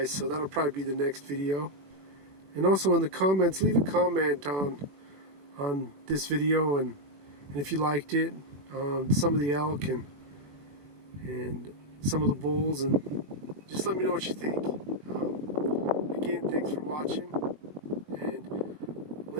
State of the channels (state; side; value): late; left; 21 ms